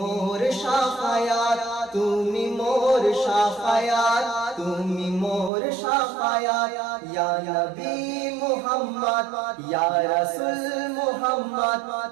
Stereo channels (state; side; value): drops out; left; at 5.5 s